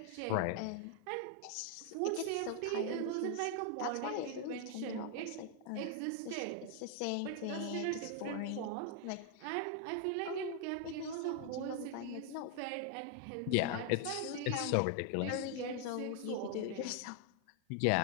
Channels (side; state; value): both; different; correlation 0.00